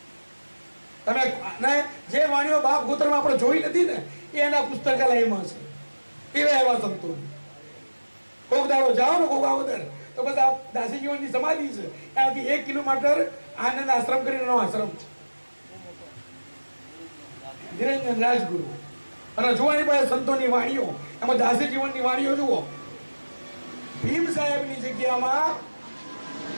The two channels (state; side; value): inverted; both; correlation -1.00